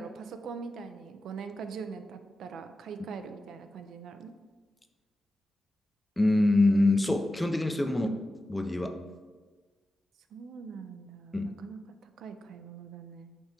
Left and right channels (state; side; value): normal; both; correlation 0.93